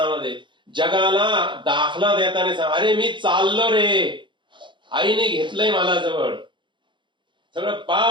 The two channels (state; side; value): late; left; 0.23 ms